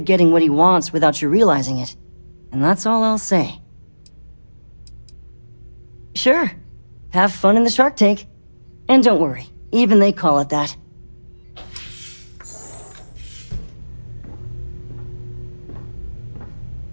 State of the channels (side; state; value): both; inverted; correlation -1.00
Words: getting what he wants without you realizing it. And that's all I'll say. Sure. Have fun in the shark tank. And don't worry, even they call it that.